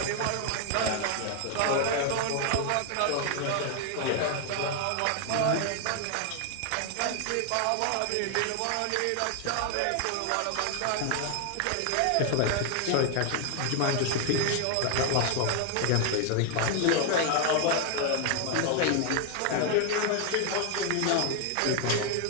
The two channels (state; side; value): different; both; correlation 0.00